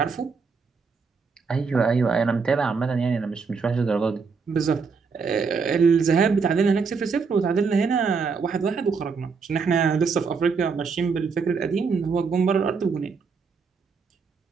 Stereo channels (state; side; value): quieter; left; 5.2 dB